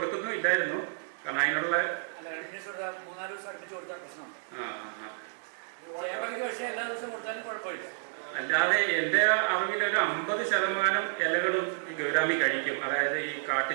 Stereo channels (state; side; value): silent; left; digital silence